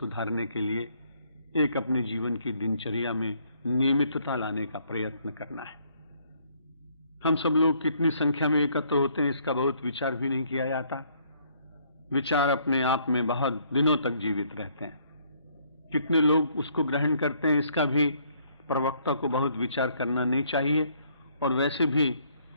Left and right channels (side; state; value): both; inverted; correlation -0.66